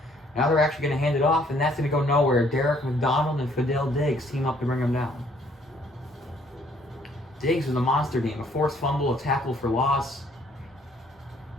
Now they're actually going to hand it off, and that's going to go nowhere. Derek McDonald and Fidel Diggs team up to bring him down. Diggs with a monster game. A forced fumble, a tackle for loss.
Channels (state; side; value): normal; both; correlation 0.63